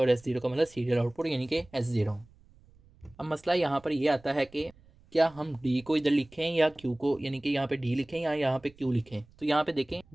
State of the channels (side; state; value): right; noise; rumble, 27 dB below the sound